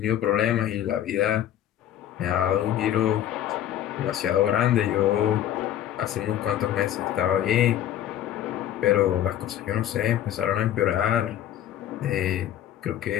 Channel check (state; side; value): quieter; right; 11.4 dB